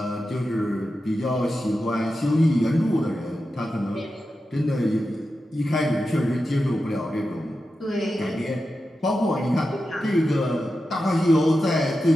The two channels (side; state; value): both; normal; correlation 0.91